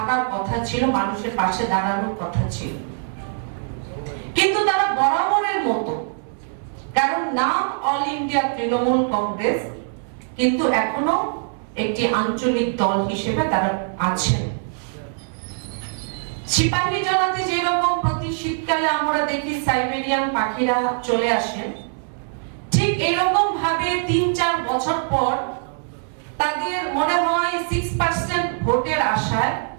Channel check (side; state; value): left; silent; 64 dB below the other